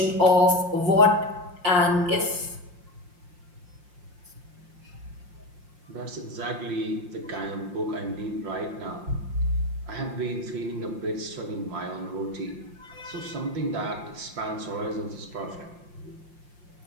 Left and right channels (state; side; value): late; left; 5.7 ms